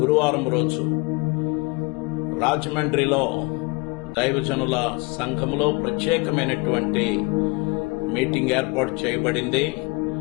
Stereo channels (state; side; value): quieter; right; 28.1 dB